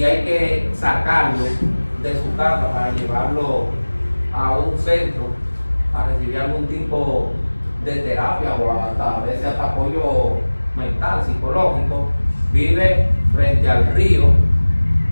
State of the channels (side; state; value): both; inverted; correlation -1.00